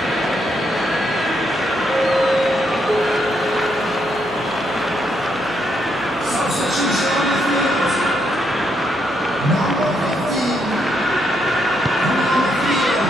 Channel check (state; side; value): noise; left; hum, 26 dB below the sound